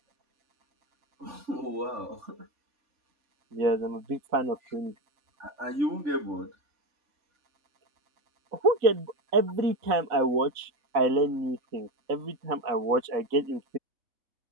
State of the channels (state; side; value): late; left; 3.5 ms